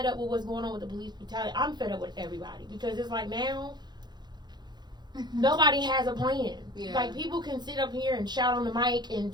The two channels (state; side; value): late; left; 0.21 ms